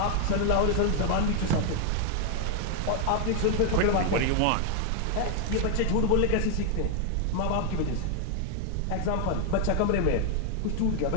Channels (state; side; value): different; both; correlation 0.00